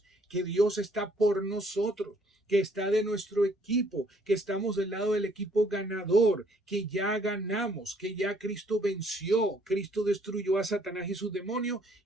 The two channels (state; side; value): normal; both; correlation 0.64